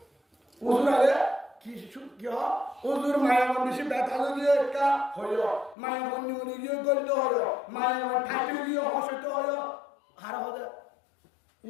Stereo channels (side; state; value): right; drops out; at 5.8 s